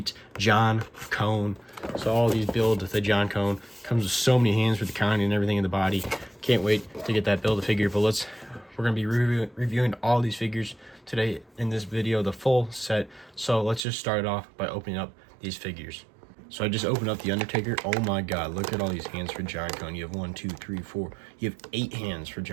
John Cone. So all these builds with the John Cone. Comes with so many hands for the counting and everything in the body. Can't wait to get that build a figure, but we're going to be reviewing all these figures today in this video, the full set. So let's just start it off by opening up these figures. So I just opened up the Undertaker. Oh my god, look at all these hands for John Cone. You have 1, 2, 3, 4. You have 8 hands for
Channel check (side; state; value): left; drops out; at 13.8 s